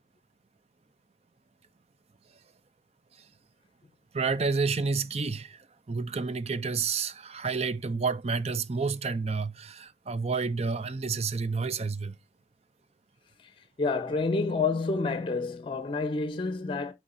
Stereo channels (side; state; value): both; normal; correlation 0.45